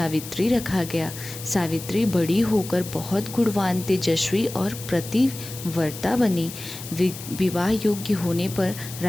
रखा गया। सावित्री बड़ी होकर बहुत गुणवान, तेजस्वी और पतिव्रता बनी। विवाह योग्य होने पर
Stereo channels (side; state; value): left; noise; hiss, 12 dB below the sound